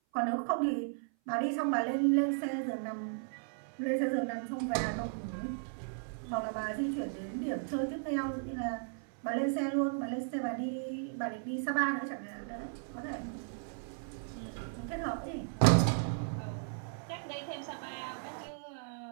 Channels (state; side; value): silent; left; 54 dB below the other